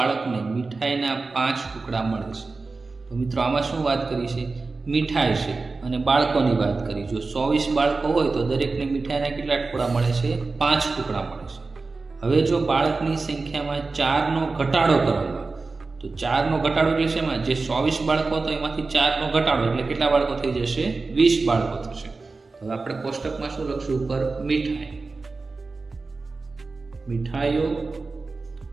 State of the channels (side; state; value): left; quieter; 3.9 dB